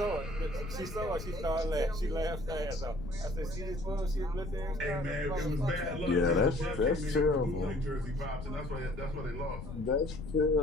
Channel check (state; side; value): noise; left; rumble, 9 dB below the sound